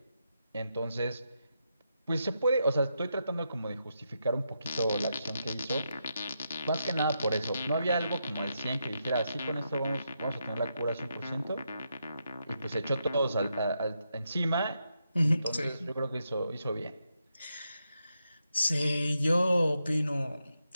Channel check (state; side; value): inverted; both; correlation -0.84